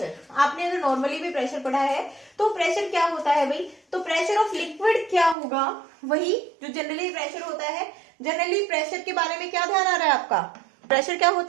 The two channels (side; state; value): left; drops out; at 5.4 s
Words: आपने अगर नॉर्मली भी प्रेशर पढ़ा है तो प्रेशर क्या होता है भाई, तो प्रेशर ऑफ लिक्विड क्या होगा, वही जो जनरली प्रेशर होता है। जनरली प्रेशर के बारे में क्या ध्यान आ रहा है आपका, प्रेशर क्या